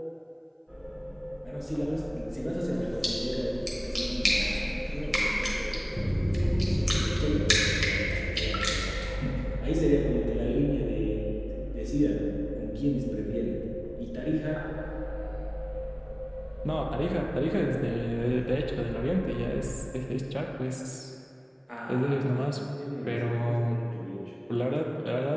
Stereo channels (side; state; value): both; identical; correlation 1.00